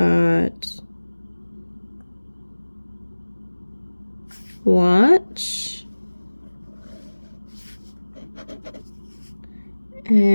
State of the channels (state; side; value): inverted; both; correlation -1.00